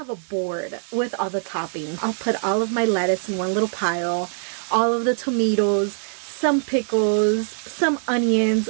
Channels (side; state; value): left; silent; digital silence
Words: a board with all the toppings. I'll put all of my lettuce in one little pile, all of the tomatoes, some pickles, some